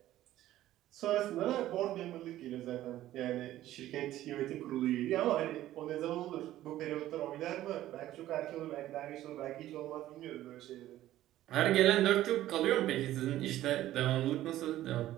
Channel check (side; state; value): left; quieter; 14.0 dB